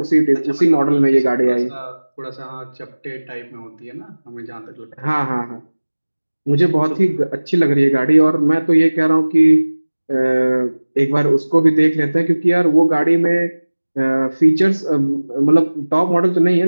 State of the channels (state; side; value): inverted; both; correlation -1.00